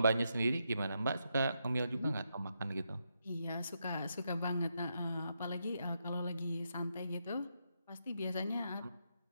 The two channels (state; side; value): inverted; both; correlation -0.81